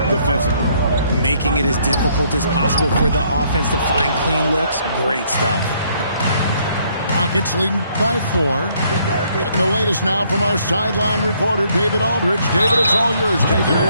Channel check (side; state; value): both; inverted; correlation -0.67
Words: defensively. Making it as difficult as possible for the offense to find clean looks. Great stuff. Rockets leading by 4. Getting the latest now from our sideline reporter, David Aldridge. David, it's all yours. Take it